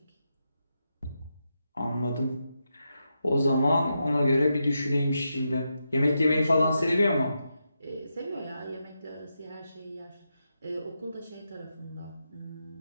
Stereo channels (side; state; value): both; inverted; correlation -0.86